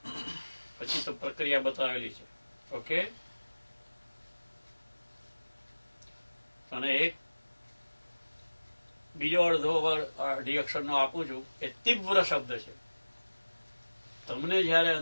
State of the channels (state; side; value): inverted; both; correlation -1.00